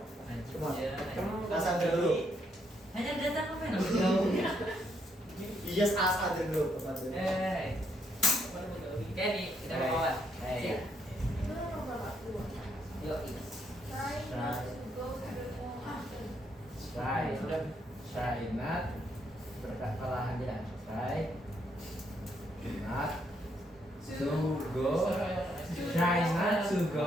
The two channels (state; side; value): normal; both; correlation 0.74